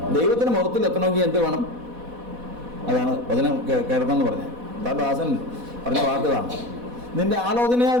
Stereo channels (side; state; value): left; late; 4.1 ms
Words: ദൈവത്തിൻ്റെ മഹത്വത്തിൽ എത്തണമെങ്കിൽ എന്ത് വേണം? അതാണ് വചനം കേൾക്കണമെന്ന് പറഞ്ഞത്. ദാസൻ പറഞ്ഞ വാക്കുകളാണ്. നിന്റെ ആലോചനയാൽ